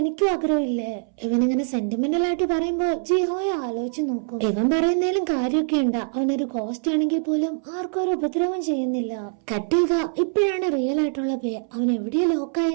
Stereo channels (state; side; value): silent; left; 63 dB below the other